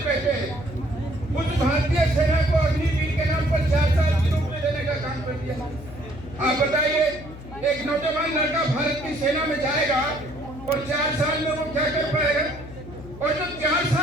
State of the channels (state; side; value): noise; left; hum, 14 dB below the sound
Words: रहते हैं, उस भारतीय सेना को अग्निवीर के नाम पर 4 साल की नौकरी देने का काम कर दिया। आप बताइए, एक नौजवान लड़का भारत की सेना में जाएगा और 4 साल में वो क्या कर पाएगा? और जो 4